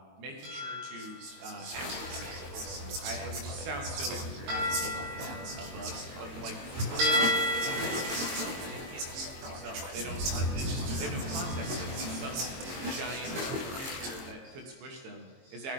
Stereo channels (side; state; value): left; late; 22 ms